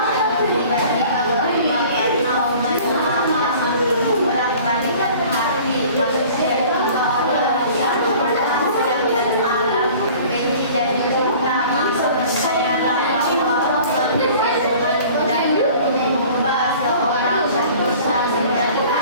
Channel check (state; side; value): inverted; both; correlation -0.47